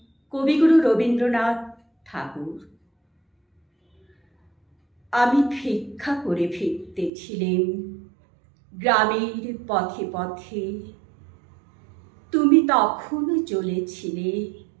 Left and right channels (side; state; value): left; drops out; at 7.1 s